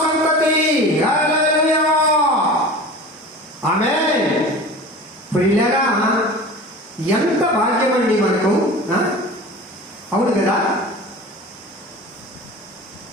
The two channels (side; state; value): both; normal; correlation 0.36